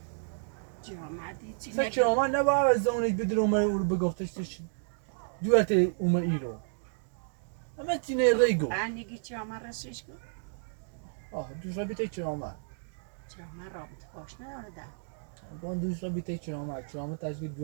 جامعه چی سه چرامت نباید از زمانش بدر اومه او رو بگفتش توش دویت اومه ای رو همه چینه ریگو انگی جامعه رسیش کن دوش را بیته چرامت جامعه رابط باش نداره بان دوش را بیته چرامت تشکیل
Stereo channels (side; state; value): left; silent; digital silence